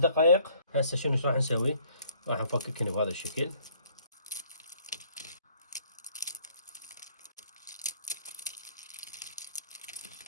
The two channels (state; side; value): inverted; both; correlation -0.60